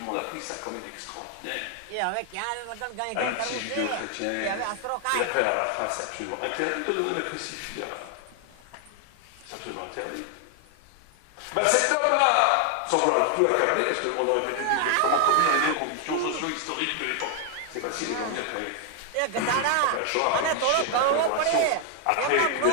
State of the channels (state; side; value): different; both; correlation 0.00